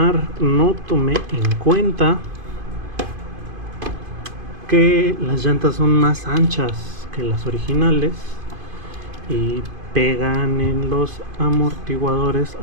no tomé en cuenta que las llantas son más anchas que las originales y pegan en los amortiguadores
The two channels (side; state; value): left; late; 2.5 ms